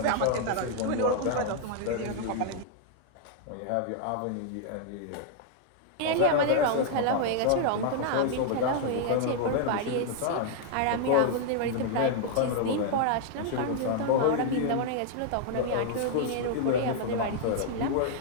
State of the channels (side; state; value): both; different; correlation 0.00